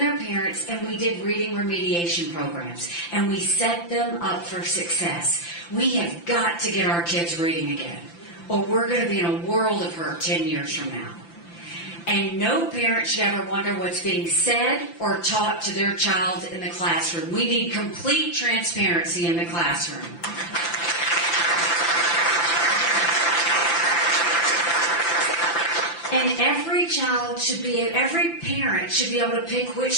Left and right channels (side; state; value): right; late; 5.9 ms